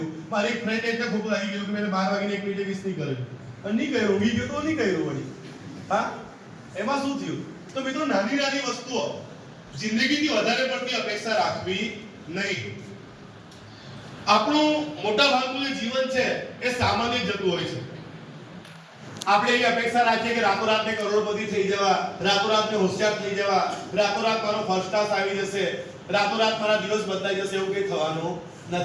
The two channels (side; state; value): both; identical; correlation 1.00